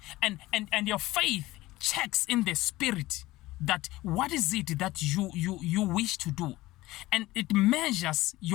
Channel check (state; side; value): quieter; right; 18.1 dB